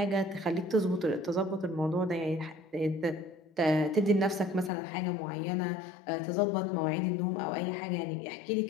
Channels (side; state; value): right; drops out; at 4.7 s